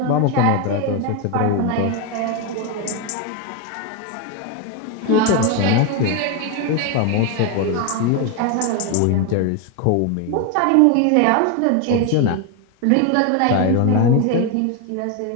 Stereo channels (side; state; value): both; different; correlation 0.01